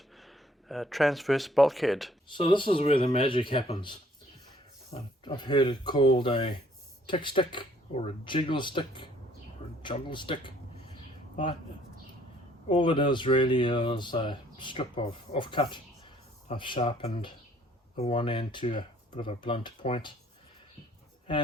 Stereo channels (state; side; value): normal; both; correlation 0.61